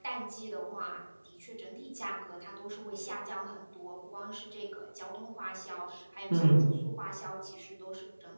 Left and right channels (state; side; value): inverted; both; correlation -1.00